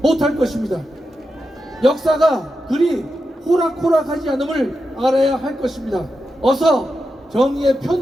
못할 것입니다. 역사가 그리 호락호락하지 않음을 알아야 할 것입니다. 어서 정의의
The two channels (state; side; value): normal; both; correlation 0.88